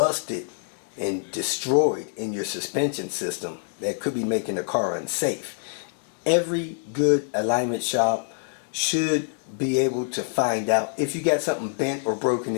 and destroyed in your suspension system that could be making the car unsafe. Every good alignment shop should be able to find out if you got something bent or broken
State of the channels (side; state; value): right; silent; digital silence